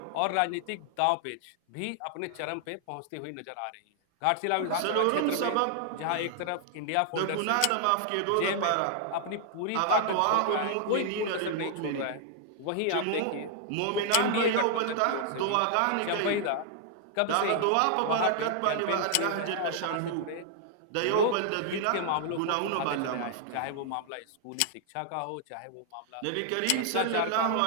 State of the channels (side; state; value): both; different; correlation -0.01